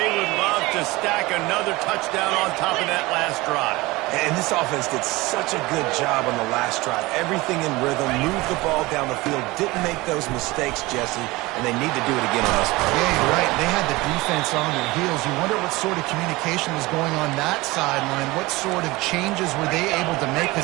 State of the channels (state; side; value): quieter; left; 21.3 dB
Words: would love to stack another touchdown on top of that last drive. And this offense did such a good job on the last drive. Everything in rhythm, moved the ball down the field, didn't make those mistakes, Jesse, and they need to do it again on this one. Yeah, you're right. They had the defense on their heels. You wonder what sort of communication was going on that sideline. What sort of changes were they able to make,